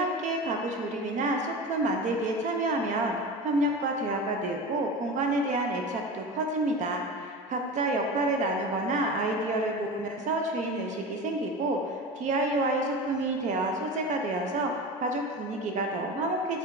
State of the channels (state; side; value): normal; both; correlation 0.29